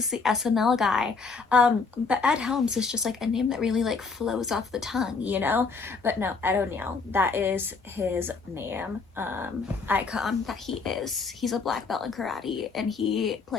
the SNL guy. But Ed Helms is just, like, a name that really, like, flows off the tongue, you know? But no, Ed O'Neill, that is his name, icon that he is. He's a black belt in karate, and he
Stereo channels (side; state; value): right; quieter; 4.6 dB